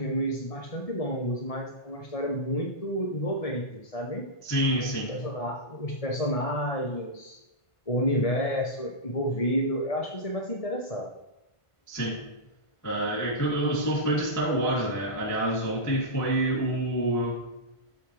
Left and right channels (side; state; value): right; late; 1.5 ms